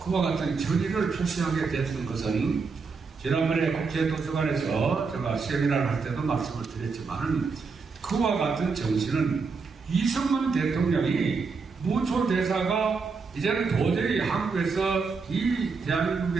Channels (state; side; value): quieter; left; 4.8 dB